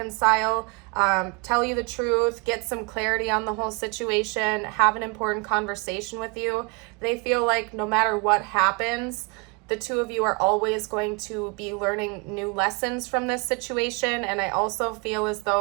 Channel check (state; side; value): quieter; left; 30.5 dB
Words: tell you the truth, get some clarity on the whole situation, have an important conversation with you. They feel like no matter what happens, the two of you are always going to be learning new lessons from this situation. And I also feel as